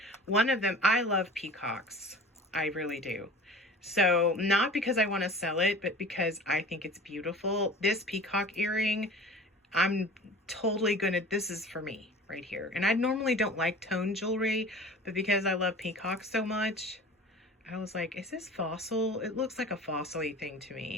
one of them, I love peacocks. I really do. So not because I want to sell it, but because I think it's beautiful. This peacock earring, I'm totally gonna, this is for me right here. And I normally don't like tone jewelry, but because I love peacocks so much, I was like, is this fossil? It looks like a fossil-y thing to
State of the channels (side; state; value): both; normal; correlation 0.40